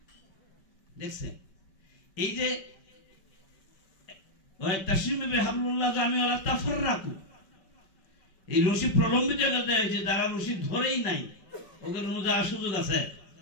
দেখছেন এই যে এই রশি প্রলম্বিত করতে হয়েছে, যারা রশি ধরেই নাই ওদের অনুযায়ী সুযোগ আছে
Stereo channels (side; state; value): right; late; 5.2 ms